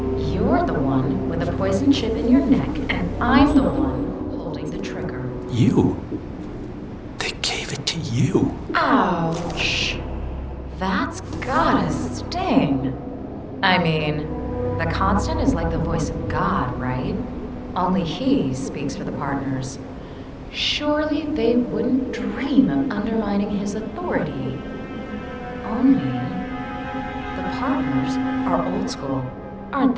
you're the one with a poison chip in your neck, and I'm the one holding the trigger. You? They gave it to you. Ouch. That's gotta sting. I mean, the Constant is like the voice of God, right? Only he speaks for the partners. Surely they wouldn't dream of undermining his authority. Only the partners are old school, aren't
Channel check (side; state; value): both; identical; correlation 1.00